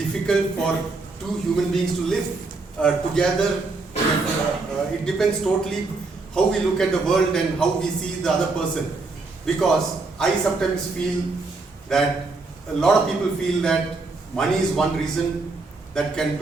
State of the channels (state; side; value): quieter; left; 3.7 dB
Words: for two human beings to live together. It depends totally how we look at the world and how we see the other person. Because I sometimes feel that a lot of people feel that money is one reason that can